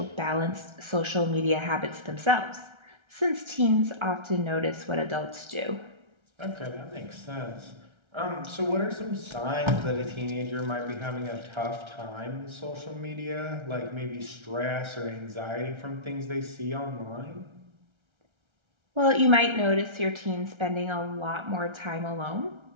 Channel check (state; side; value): late; left; 1.3 ms